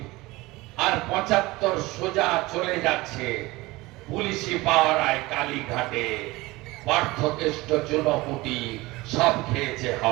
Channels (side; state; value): left; quieter; 20.8 dB